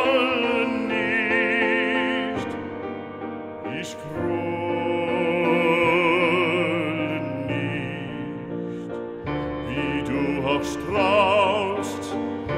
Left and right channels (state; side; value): identical; both; correlation 1.00